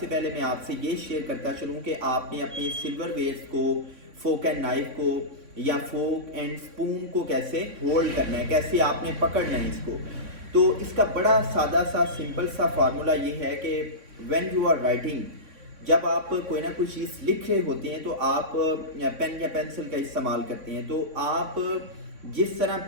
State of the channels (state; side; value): late; left; 3.6 ms